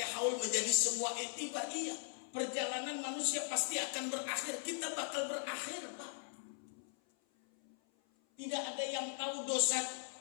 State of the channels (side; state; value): right; silent; 52 dB below the other